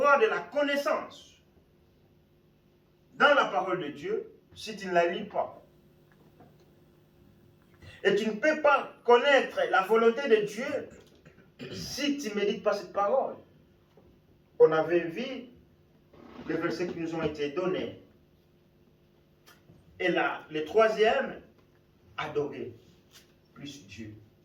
de la connaissance dans la parole de Dieu si tu ne la lis pas. Et tu ne peux pas connaître la volonté de Dieu si tu ne médites pas cette parole. On avait vu les versets qui nous ont été donnés. Et là, le troisième, adorer plus Dieu.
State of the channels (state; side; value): identical; both; correlation 1.00